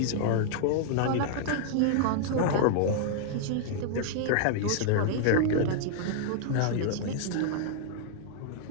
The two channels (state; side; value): different; both; correlation -0.01